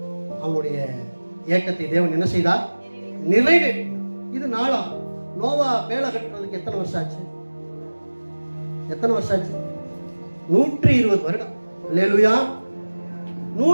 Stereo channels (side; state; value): both; inverted; correlation -1.00